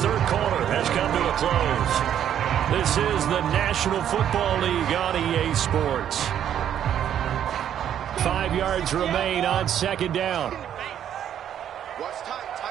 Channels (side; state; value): left; quieter; 10.0 dB